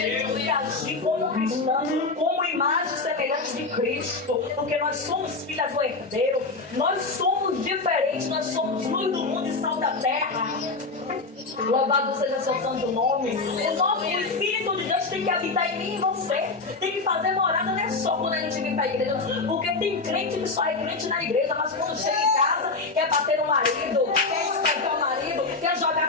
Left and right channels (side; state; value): right; quieter; 3.8 dB